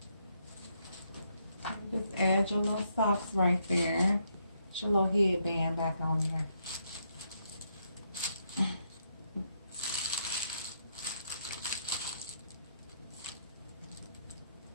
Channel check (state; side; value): inverted; both; correlation -0.76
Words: Just add your little socks right there. Put your little headband back on there.